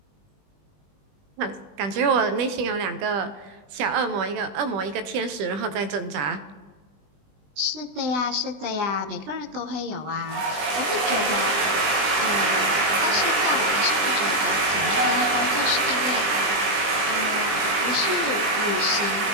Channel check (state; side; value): late; left; 20 ms